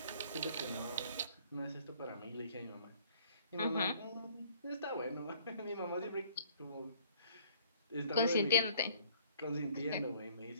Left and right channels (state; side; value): inverted; both; correlation -0.56